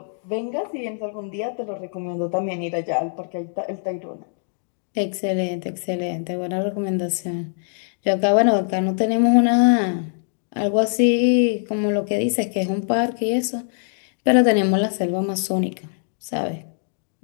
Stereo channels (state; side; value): silent; right; digital silence